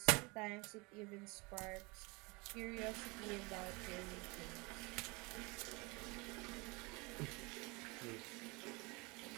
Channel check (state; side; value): quieter; left; 27.0 dB